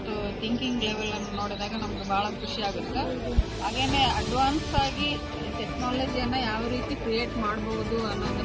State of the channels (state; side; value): identical; both; correlation 1.00